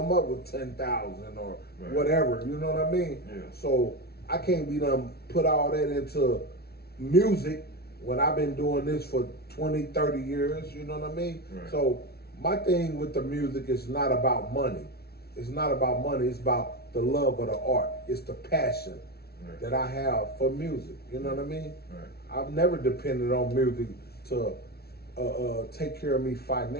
up with 10,000 or whatever, you know what I mean? Yeah. So I can't be done put all that into music when I've been doing this for 20, 30 years, you know what I mean? Right. So my thing with the music is not about money. It's not about money, it's about the love of the art. It's the passion that I have for music, you know what I mean? Right. I've never depended on music to take care of me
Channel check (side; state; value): right; late; 0.45 ms